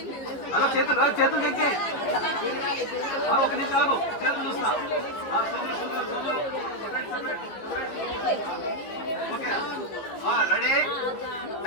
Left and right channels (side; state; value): right; late; 15 ms